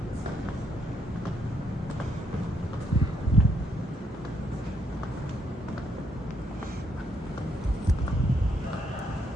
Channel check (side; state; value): both; normal; correlation 0.73